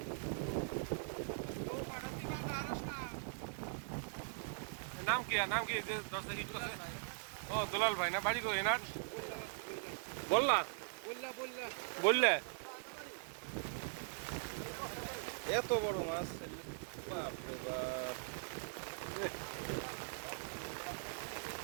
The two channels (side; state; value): left; silent; 50 dB below the other